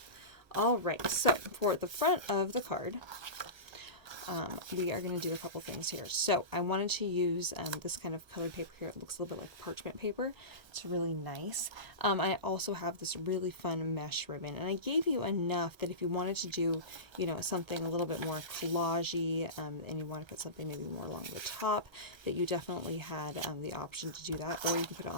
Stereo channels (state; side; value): late; left; 1.3 ms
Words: All right, so for the front of the card, we are going to do a couple things here. So I wanted to use this kind of colored paper here. It looks a little bit like parchment paper. It's really nice. I also have this really fun mesh ribbon, and I gave you enough that if you wanted to do, you know, something a little bit more collagey, and you want to put something maybe more along the top, that you definitely had the option to do that, or you can put it